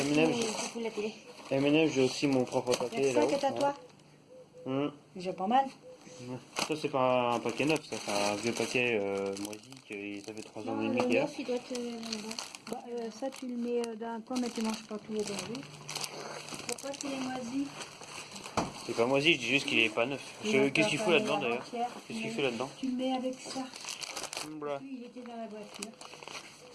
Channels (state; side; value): identical; both; correlation 1.00